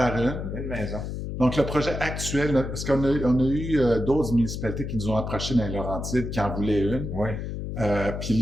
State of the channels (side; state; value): left; noise; hum, 5 dB below the sound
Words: une maison. Donc, le projet actuel, parce qu'on a eu d'autres municipalités qui nous ont approchés dans les Laurentides qui en voulaient une. Oui. Puis